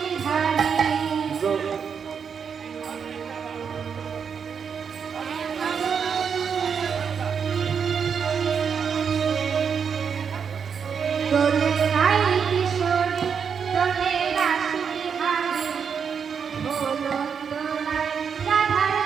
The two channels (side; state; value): left; quieter; 6.7 dB